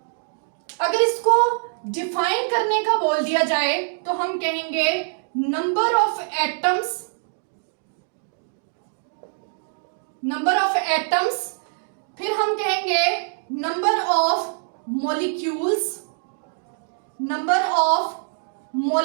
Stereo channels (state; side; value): silent; left; digital silence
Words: अगर इसको डिफाइन करने का बोल दिया जाए तो हम कहेंगे नंबर ऑफ एटम्स, फिर हम कहेंगे नंबर ऑफ मॉलिक्यूल्स,